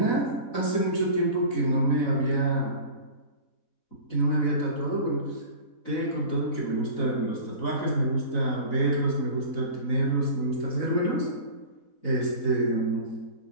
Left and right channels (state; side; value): late; right; 4.0 ms